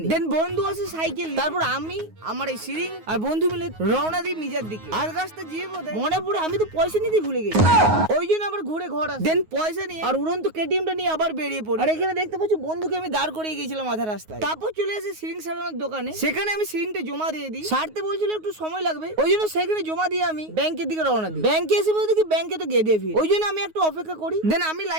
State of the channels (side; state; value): left; late; 9.4 ms